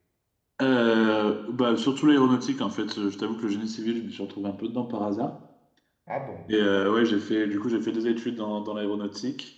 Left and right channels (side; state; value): both; identical; correlation 1.00